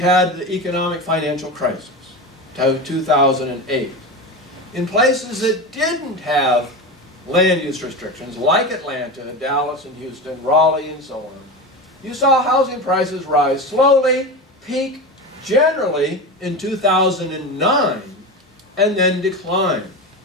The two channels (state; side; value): normal; both; correlation 0.24